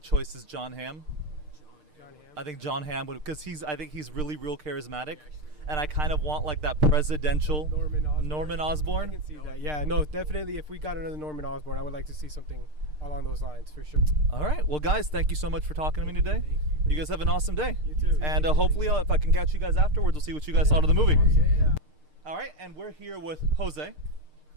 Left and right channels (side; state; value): left; late; 6.6 ms